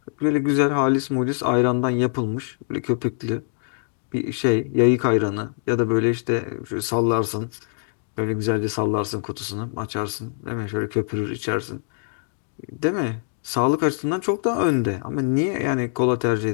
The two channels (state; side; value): silent; right; digital silence